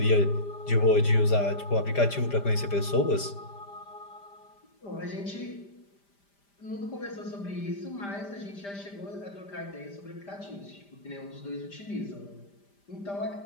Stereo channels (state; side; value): late; right; 5.0 ms